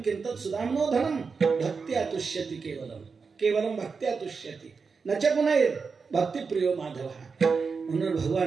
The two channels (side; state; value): left; quieter; 5.1 dB